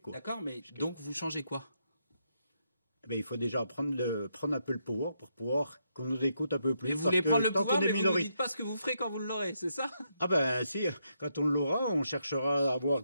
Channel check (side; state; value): both; inverted; correlation -0.79